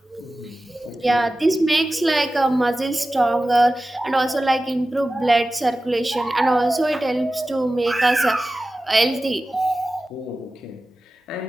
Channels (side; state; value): both; normal; correlation 0.95